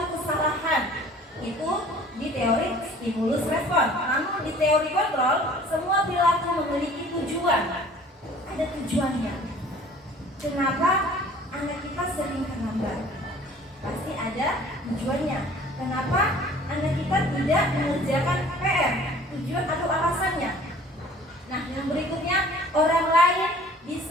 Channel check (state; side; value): normal; both; correlation 0.50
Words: kesalahan. Itu di teori stimulus respon. Namun di teori kontrol, semua perilaku memiliki tujuan. Ada tujuannya. Kenapa anak kita sering terlambat? Pasti ada tujuannya. Kenapa anak kita tidak mengerjakan PR? tujuan atau alasannya. Nah, yang berikutnya, orang lain